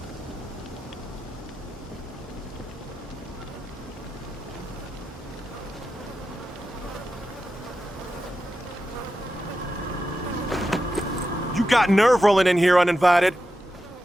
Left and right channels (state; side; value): normal; both; correlation 0.90